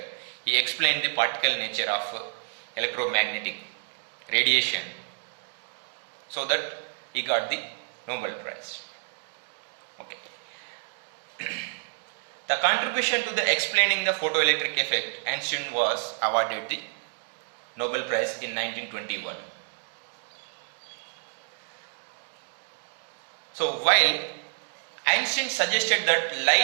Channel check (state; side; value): silent; left; digital silence